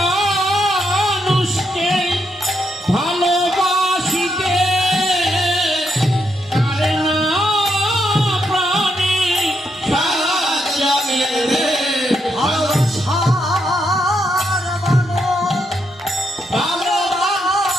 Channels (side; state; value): both; normal; correlation 0.79